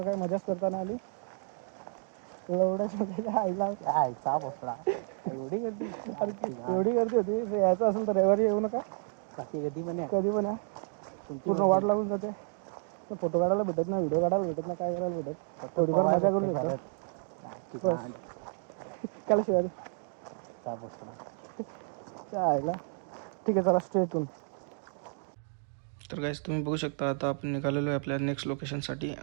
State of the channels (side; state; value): left; silent; 57 dB below the other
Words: काही मजाच करता नाही आली. एवढ्याच आईला आईचा बसला एवढी गर्दी. एवढी गर्दी होती. जर यायचं असेल तर रविवारी येऊ नका. बाकी कधी पण कधी पण या. पूर्ण वाट लागून जाते. फोटो काढायला भेटत नाही, व्हिडिओ काढायला भेटत नाही, काय करायला भेटत. थोडीफार मजा करू शकतो बस. काला शिवाय चायला. ठीक आहे, चला स्ट्रेट. तर गाईज तुम्ही बघू शकता आता आपण निघालेलो आहे आपल्या नेक्स्ट लोकेशनसाठी.